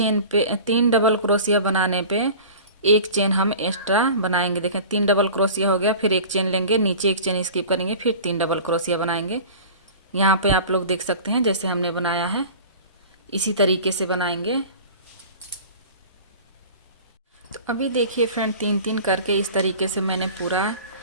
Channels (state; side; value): inverted; both; correlation -0.39